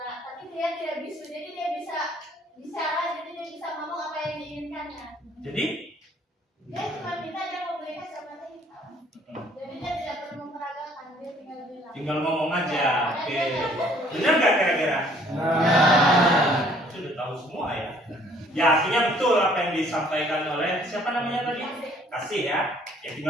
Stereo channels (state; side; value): normal; both; correlation 0.59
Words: tapi dia tidak bisu, jadi dia bisa bicara, jadi dia bisa ngomong apa yang diinginkannya. Jadi Dia cuma minta dia mau beli kacamata hitam. Jadi dia tidak perlu memperagakan, dia tinggal bilang. tinggal ngomong aja. Oke. Benar nggak kira-kira? Sudah tahu semua ya. Ya artinya betul apa yang disampaikan oleh siapa namanya tadi? Kasih ya. Ya